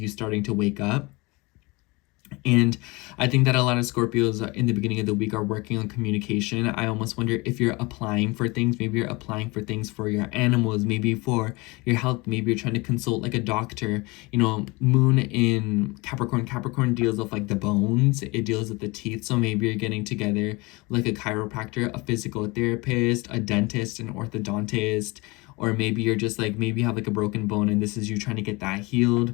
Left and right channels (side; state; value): right; quieter; 24.9 dB